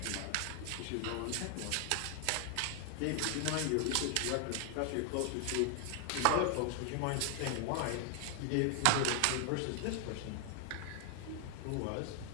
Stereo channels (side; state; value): both; different; correlation 0.00